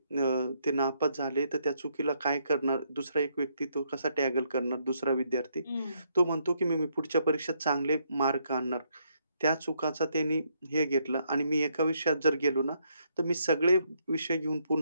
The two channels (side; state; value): both; inverted; correlation -0.74